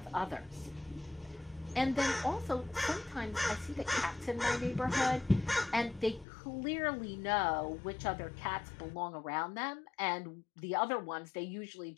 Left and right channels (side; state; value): right; drops out; at 6.2 s